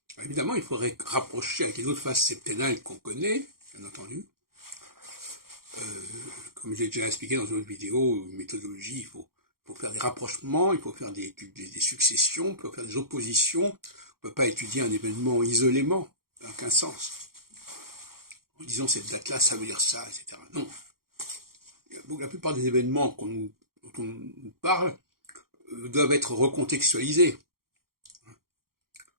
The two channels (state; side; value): late; left; 0.93 ms